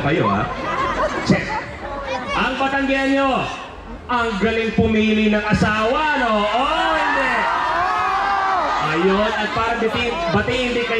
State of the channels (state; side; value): identical; both; correlation 1.00